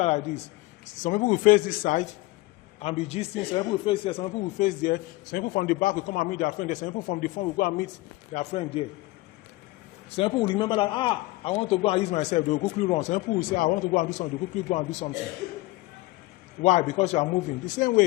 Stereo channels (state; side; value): quieter; right; 20.0 dB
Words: like this. Some people will face this side and be gisting. Some people will face there. Some people will face there. Some people from the back will come and meet their friend there. Some people from the front will go and meet their friend there. Some people will remember that, I want to go and use myself. They will quickly run. Some people will say, I want to go and do something. They will quickly go and do something. Why? Because you are moving. The same